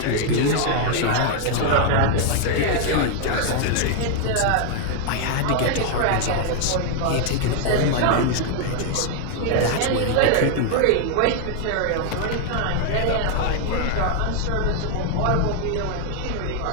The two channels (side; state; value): both; different; correlation 0.00